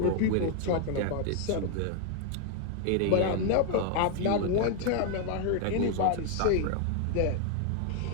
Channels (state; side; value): different; both; correlation 0.00